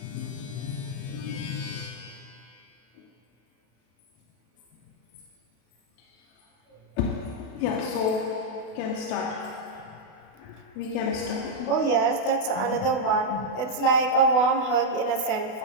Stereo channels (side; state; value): right; late; 32 ms